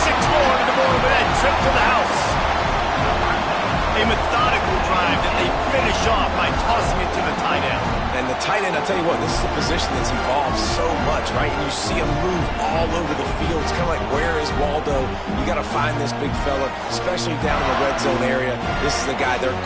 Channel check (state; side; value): identical; both; correlation 1.00